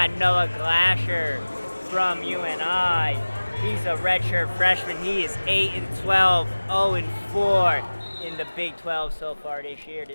Noah Glasher from UNI. He's a redshirt freshman. He is 8-12, 0-4 in the Big 12 so far this year.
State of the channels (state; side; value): inverted; both; correlation -1.00